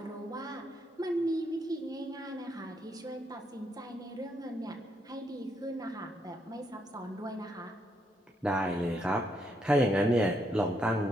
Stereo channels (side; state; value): both; normal; correlation 0.76